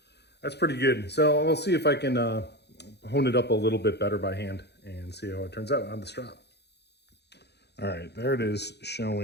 pretty good. So I'll see if I can hone it up a little bit better by hand and see how it turns out on the strop. All right, there it is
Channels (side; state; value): right; late; 0.49 ms